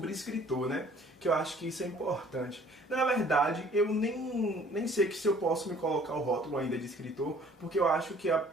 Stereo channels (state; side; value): normal; both; correlation 0.55